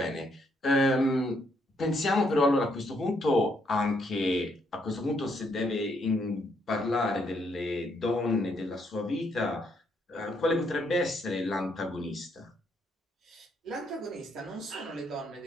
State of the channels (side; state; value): both; normal; correlation 0.73